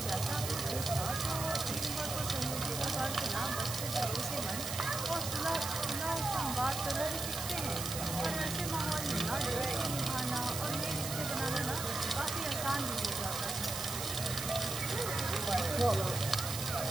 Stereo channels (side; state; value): right; noise; hiss, 5 dB below the sound